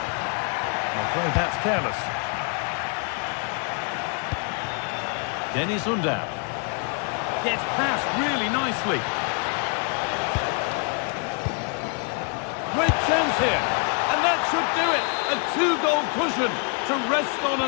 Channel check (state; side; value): quieter; right; 38.5 dB